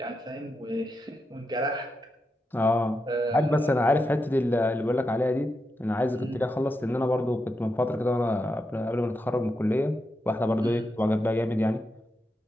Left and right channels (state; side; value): normal; both; correlation 0.86